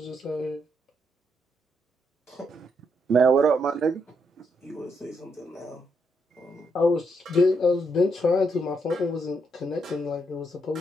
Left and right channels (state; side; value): normal; both; correlation 0.78